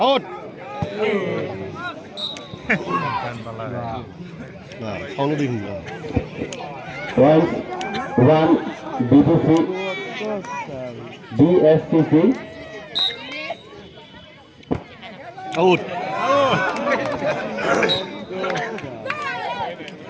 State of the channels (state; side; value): identical; both; correlation 1.00